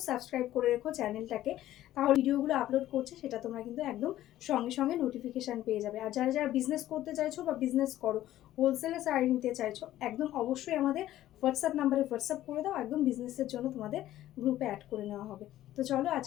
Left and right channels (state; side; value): quieter; right; 13.8 dB